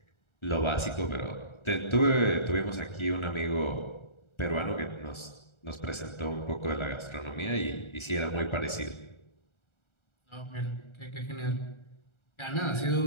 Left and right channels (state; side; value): late; right; 1.4 ms